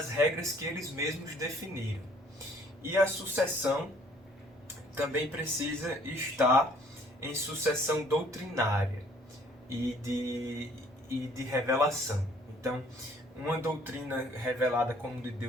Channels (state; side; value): normal; both; correlation 0.59